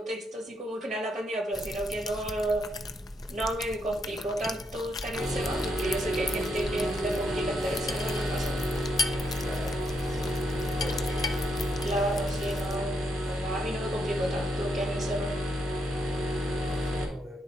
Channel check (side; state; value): both; normal; correlation 0.78